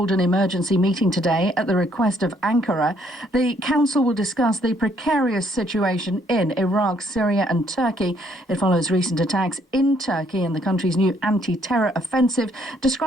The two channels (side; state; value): both; normal; correlation 0.68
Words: an emergency meeting today at the request of Ankara. The council will discuss the precarious situation in Iraq, Syria and Turkey. It follows recent attacks in Turkey and the country's new anti-terror offensive,